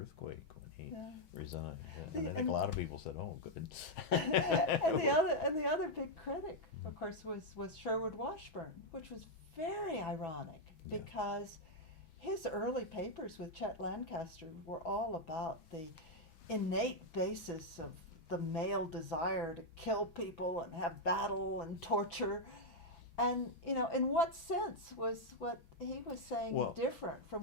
when he resigned, and I think a lot of people said, "Oh, good." and the other big critic, of course, was Sherwood Washburn, which was very ironic because his early papers with Chet Lancaster were all about the innate basis of the male desire to kill people and have battle and torture. And, in what sense was what he was saying different from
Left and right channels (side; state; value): right; late; 6.1 ms